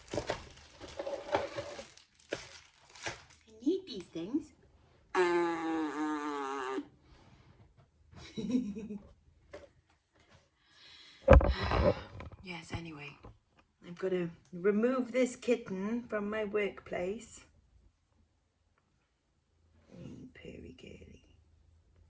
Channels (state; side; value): identical; both; correlation 1.00